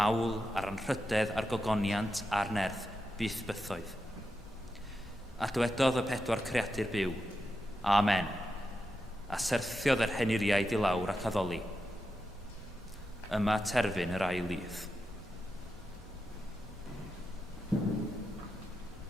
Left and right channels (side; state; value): both; normal; correlation 0.88